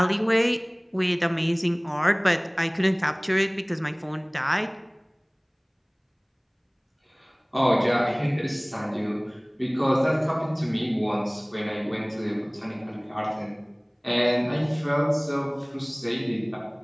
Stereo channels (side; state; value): both; identical; correlation 1.00